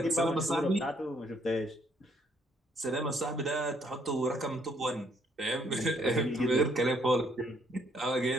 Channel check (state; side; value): normal; both; correlation 0.68